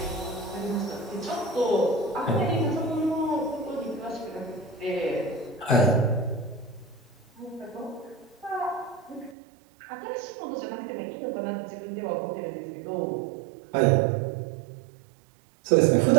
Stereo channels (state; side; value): drops out; left; at 9.3 s